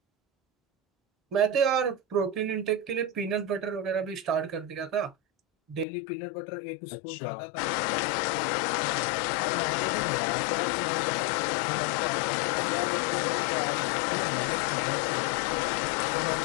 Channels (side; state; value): right; drops out; at 5.9 s